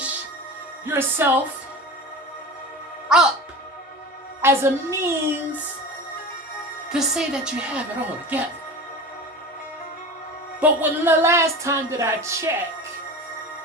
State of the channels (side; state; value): both; normal; correlation 0.32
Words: yourself up as a means to say that you have it all together. But when the last time that I checked,